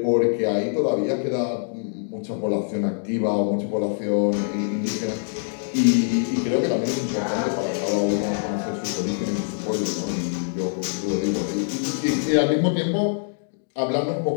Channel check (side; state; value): right; silent; digital silence